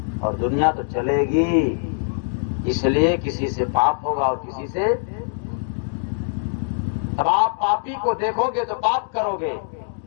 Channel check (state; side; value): silent; right; digital silence